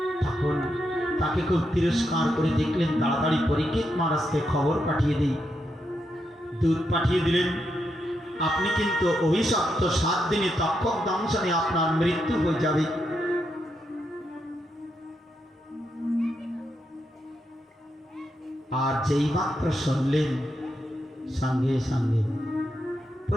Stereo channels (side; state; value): both; normal; correlation 0.83